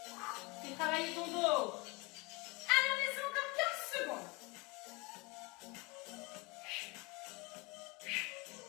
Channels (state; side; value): quieter; right; 26.8 dB